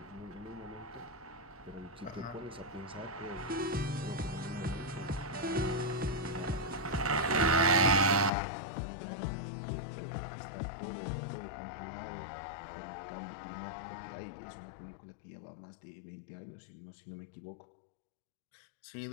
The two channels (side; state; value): right; drops out; at 8.3 s